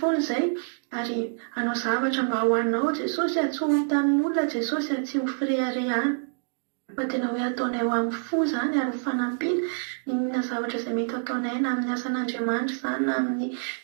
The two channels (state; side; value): silent; left; digital silence